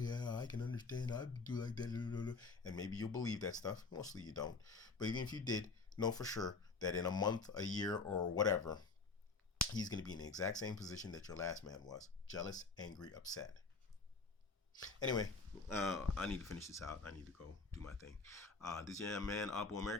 I can understand, I do like that, and maybe you'll believe that stuff. Mostly you don't. But even if you did, know for sure that in a month, a year, or whatever, he's going to be in the exact same position that your last man was. Jealous, angry, upset. Anyway, I need to finish this out. I need to go do my thing. This is your man,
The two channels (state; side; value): quieter; right; 4.2 dB